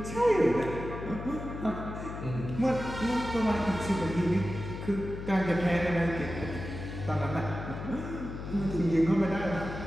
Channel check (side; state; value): left; noise; hum, 8 dB below the sound